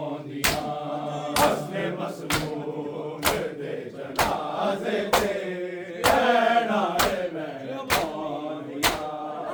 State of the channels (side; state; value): both; identical; correlation 1.00